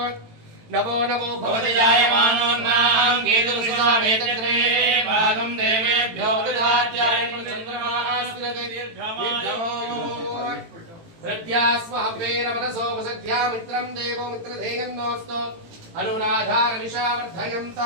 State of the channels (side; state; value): left; late; 18 ms